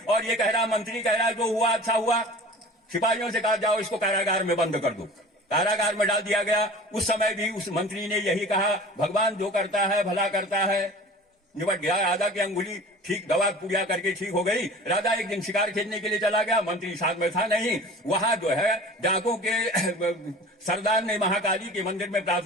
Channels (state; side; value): normal; both; correlation 0.40